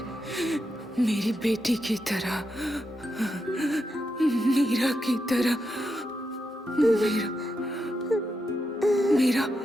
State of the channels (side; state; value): both; normal; correlation 0.85